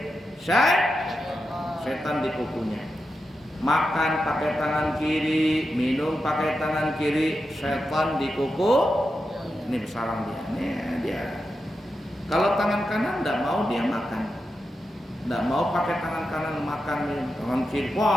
Setan di kukunya. Makan pakai tangan kiri, minum pakai tangan kiri, setan di kuku. Ini bersarang dia. Nih dia. Kalau tangan kanan tidak mau dia makan, tidak mau pakai tangan kanan makan, tangan kiri,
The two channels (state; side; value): normal; both; correlation 0.88